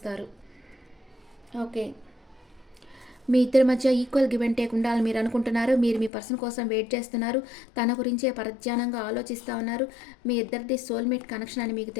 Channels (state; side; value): drops out; right; at 6.1 s